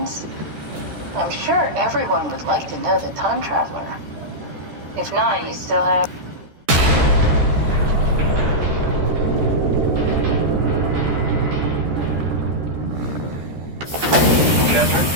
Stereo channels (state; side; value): late; left; 13 ms